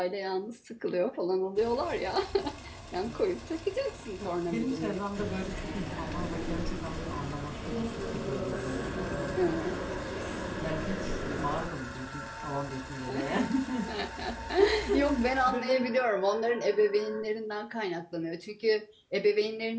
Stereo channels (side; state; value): both; identical; correlation 1.00